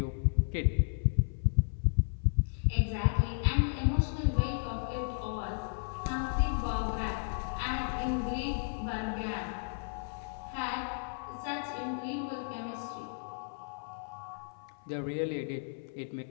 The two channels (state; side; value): silent; right; 55 dB below the other